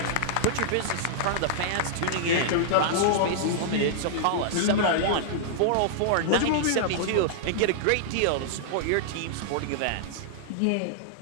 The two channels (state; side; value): different; both; correlation -0.01